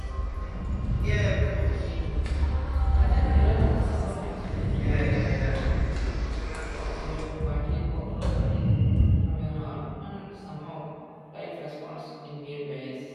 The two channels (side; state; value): both; identical; correlation 1.00